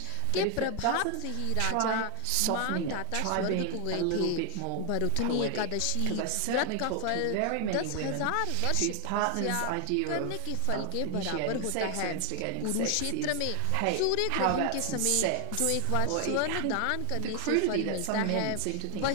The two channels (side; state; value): both; different; correlation 0.00